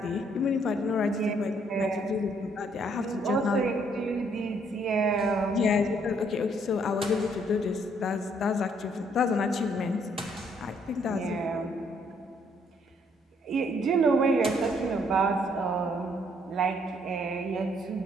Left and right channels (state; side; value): normal; both; correlation 0.68